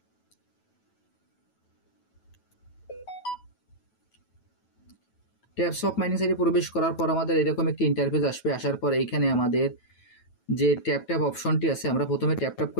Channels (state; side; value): late; right; 9.1 ms